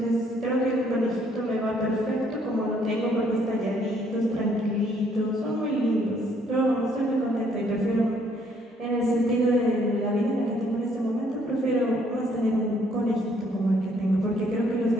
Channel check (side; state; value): both; normal; correlation 0.66